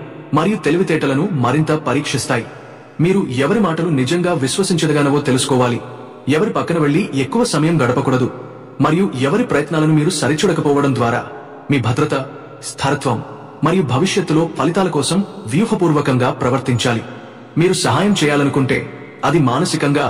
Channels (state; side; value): identical; both; correlation 1.00